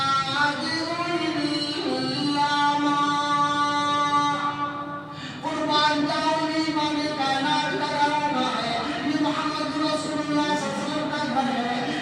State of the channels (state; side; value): identical; both; correlation 1.00